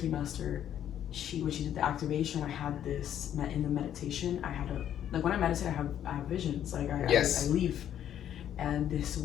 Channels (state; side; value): quieter; right; 10.4 dB